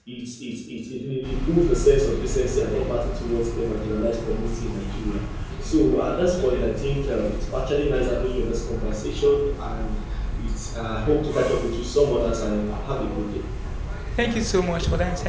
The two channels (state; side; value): identical; both; correlation 1.00